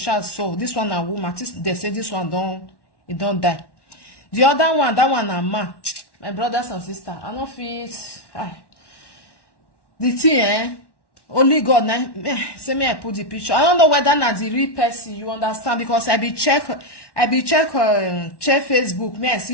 so. This one a woman. They say this one don't die. The other one, that one a man. My brothers and sisters, I don't feel the thing, only God now. Say me I put the picture. I don't know whether na the real person. You understand? Because I be check Facebook. Me I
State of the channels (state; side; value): late; right; 1.1 ms